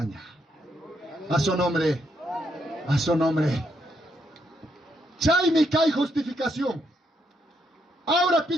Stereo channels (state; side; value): normal; both; correlation 0.77